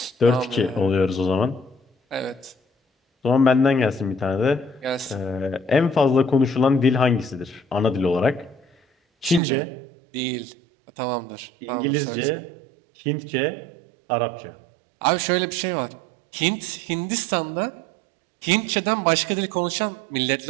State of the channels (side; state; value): left; drops out; at 9.4 s